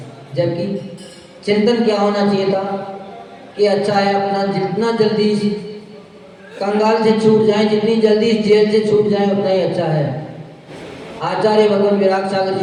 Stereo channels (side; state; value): both; identical; correlation 1.00